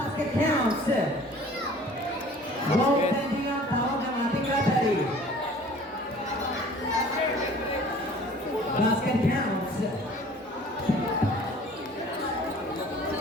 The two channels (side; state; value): both; normal; correlation 0.49